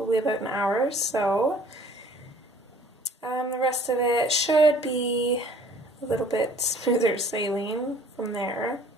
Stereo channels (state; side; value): normal; both; correlation 0.54